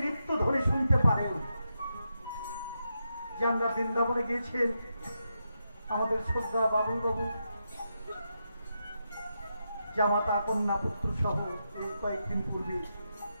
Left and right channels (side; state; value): both; inverted; correlation -0.85